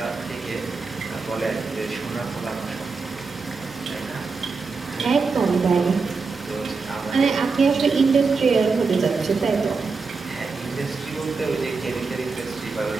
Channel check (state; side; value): quieter; left; 4.5 dB